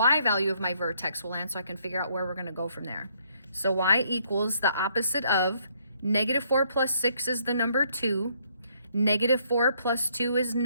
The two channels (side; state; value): both; inverted; correlation -0.69